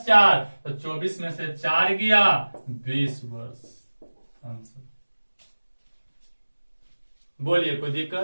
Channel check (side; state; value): both; inverted; correlation -1.00